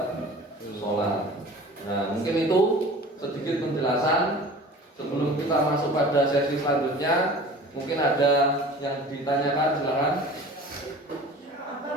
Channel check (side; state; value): both; normal; correlation 0.42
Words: sholat. Nah, mungkin itu sedikit penjelasan. Sebelum kita masuk pada sesi selanjutnya, mungkin ada yang ditanyakan, silakan. Apa